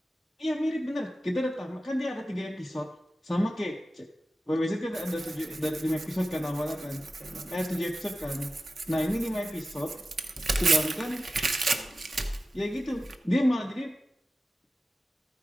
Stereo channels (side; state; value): both; normal; correlation 0.94